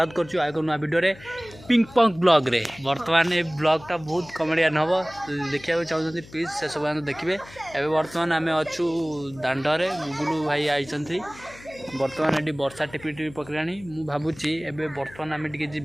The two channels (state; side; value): noise; left; hum, 20 dB below the sound